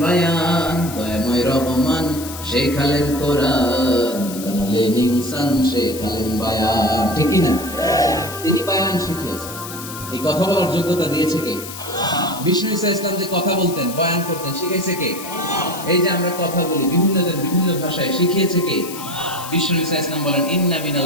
বায়ান। দয়াময় রহমান শেখালেন কোরআন, বানালেন ইনসান, শেখালেন বায়ান। ঠিক কি না? তিনি বায়ান শিখিয়েছেন। এই কথা বলার যোগ্যতা দিয়েছে কে? বিষ্ণু ঈসা ইসলাম যে কথা বলতেন, বয়ান করতেন, শিখাইছে কে? এই যে আমরা কথা বলি বিভিন্ন জন বিভিন্ন ভাষায়, শিখিয়েছে কে? বিষ্ণু ঈসা ইসলাম বলেন ইন্না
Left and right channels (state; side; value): noise; left; hiss, 12 dB below the sound